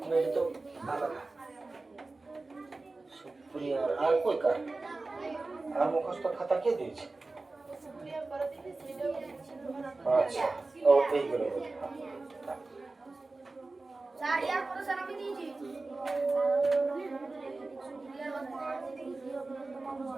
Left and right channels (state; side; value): quieter; left; 3.4 dB